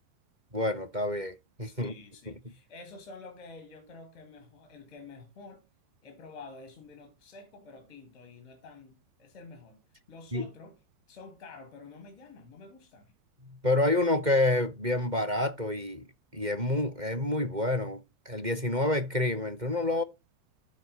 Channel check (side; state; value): left; late; 2.1 ms